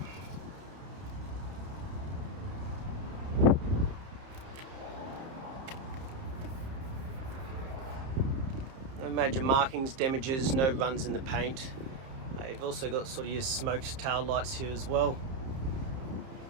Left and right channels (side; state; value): left; late; 30 ms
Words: No major markings, damages, no runs in the paint. You've also got sort of your smoked tail lights here as well.